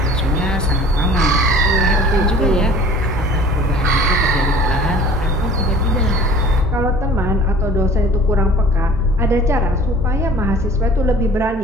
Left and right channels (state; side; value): normal; both; correlation 0.47